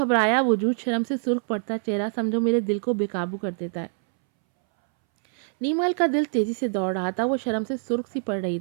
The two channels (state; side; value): silent; left; 62 dB below the other